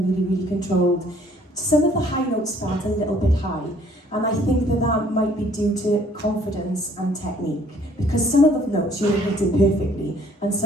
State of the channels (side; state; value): both; normal; correlation 0.59